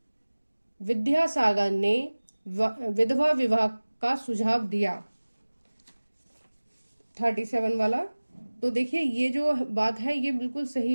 विद्यासागर ने विधवा विवाह का सुझाव दिया। 37 वाला, तो देखिए ये जो बात है ये बिल्कुल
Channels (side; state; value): both; inverted; correlation -1.00